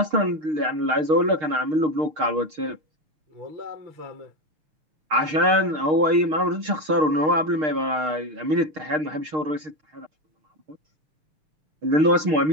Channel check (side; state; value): left; late; 6.5 ms